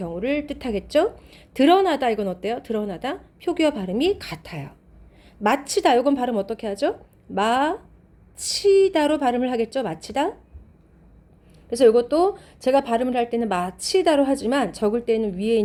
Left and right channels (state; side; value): identical; both; correlation 1.00